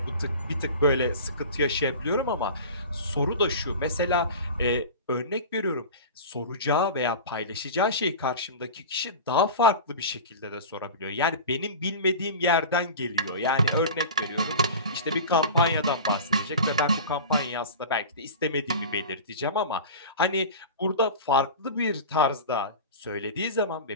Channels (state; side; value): inverted; both; correlation -0.32